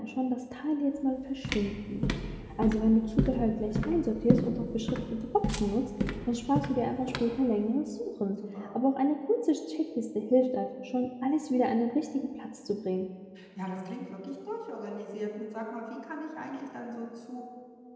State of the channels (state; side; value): identical; both; correlation 1.00